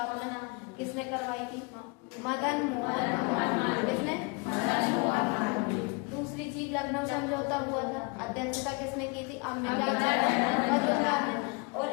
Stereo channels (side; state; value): right; quieter; 30.7 dB